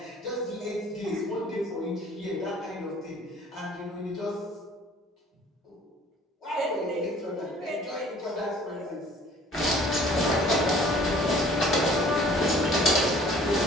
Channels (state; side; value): normal; both; correlation 0.53